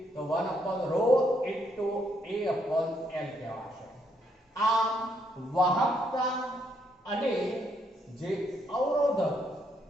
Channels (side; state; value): both; normal; correlation 0.74